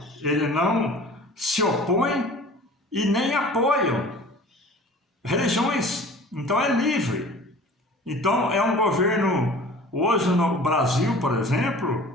ele não se opõe e nem apoia religiões. Então é livre. Então é um governo, hoje no Brasil, por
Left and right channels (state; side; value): normal; both; correlation 0.44